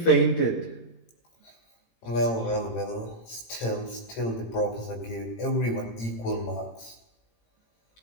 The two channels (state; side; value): late; right; 18 ms